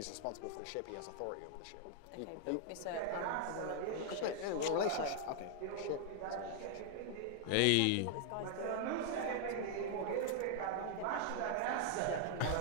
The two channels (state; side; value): different; both; correlation 0.00